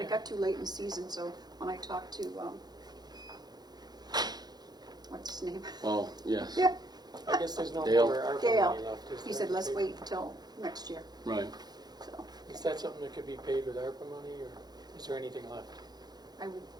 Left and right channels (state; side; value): late; left; 0.20 ms